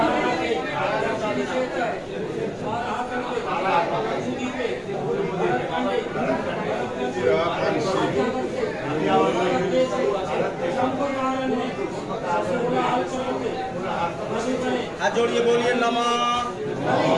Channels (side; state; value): both; identical; correlation 1.00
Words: हाथ जोड़िए बोलिए नमः